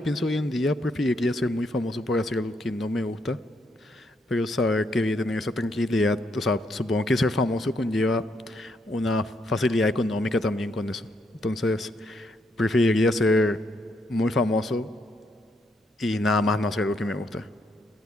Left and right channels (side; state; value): both; normal; correlation 0.75